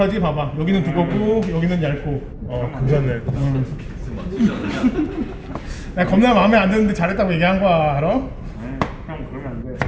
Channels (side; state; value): both; identical; correlation 1.00